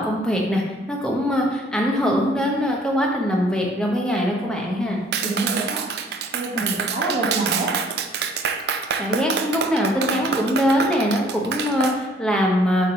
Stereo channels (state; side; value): normal; both; correlation 0.58